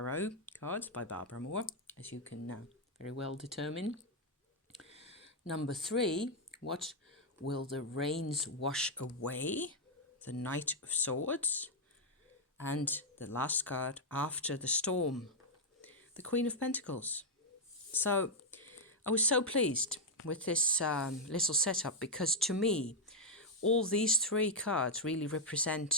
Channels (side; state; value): both; normal; correlation -0.01